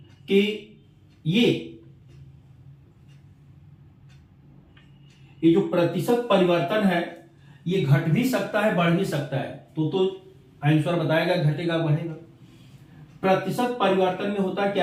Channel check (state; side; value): identical; both; correlation 1.00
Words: कि ये जो प्रतिशत परिवर्तन है ये घट भी सकता है, बढ़ भी सकता है। तो आंसर बताएगा घटेगा बढ़ेगा। प्रतिशत परिवर्तन में होता